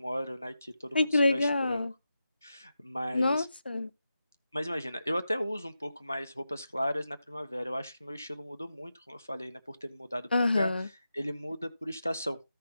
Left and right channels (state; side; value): inverted; both; correlation -0.89